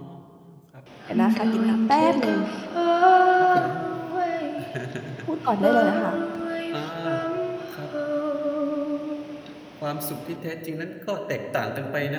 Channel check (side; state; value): both; identical; correlation 1.00